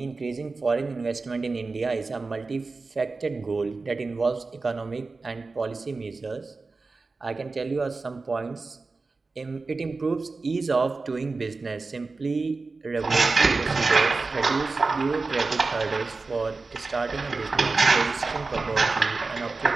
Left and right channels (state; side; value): quieter; left; 3.9 dB